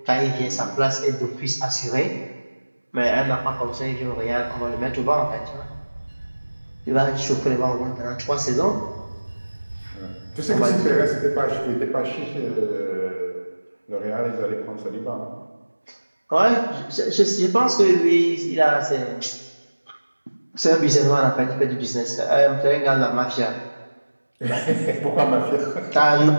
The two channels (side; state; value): both; inverted; correlation -1.00